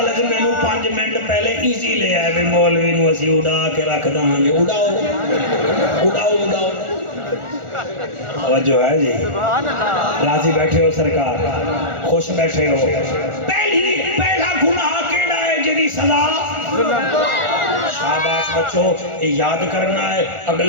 ہے میں نو 5 منٹ پہلے ایزی لے آئے بھی مولوی نو اسی اڑا کے رکھ داں گے اڑاؤ اڑاؤ اڑاؤ توجہ ہے جی راضی بیٹھے ہو سرکار خوش بیٹھے ہو پہلا گناہ کیڑا ہے جدی سزا شاباش بچو یہ یاد کرنا ہے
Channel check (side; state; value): left; late; 1.4 ms